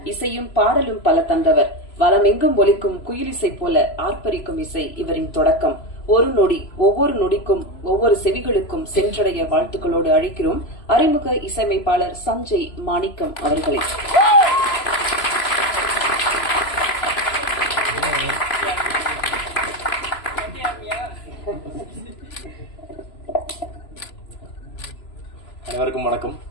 இசையும் பாடலும் பல தந்தவர், வலமெங்கும் ஒலிக்கும் குயிலிசை போல ஆர்ப்பரிக்கும் இசை இவரின் தொடக்கம். ஒரு நொடி, ஒவ்வொரு நொடிக்கும் ஒவ்வொரு செவிகளுக்கும் சென்றடைய வாழ்த்துக்களோடு அழைக்கிறோம் அறிமுக இசையமைப்பாளர் சஞ்சய் மாணிக்கம் அவர்களை. அனைவருக்கும் வணக்கம்.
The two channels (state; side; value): late; right; 3.0 ms